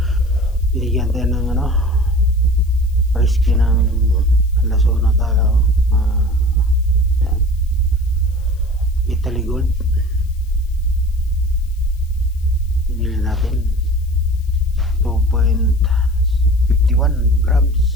binigyan tayo ng risky ng alasona talaga. Yan. Italy Gold. Binili natin 2.51 grams.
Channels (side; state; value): left; noise; hiss, 29 dB below the sound